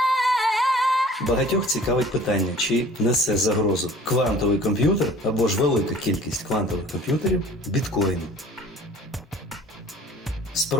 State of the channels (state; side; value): normal; both; correlation 0.48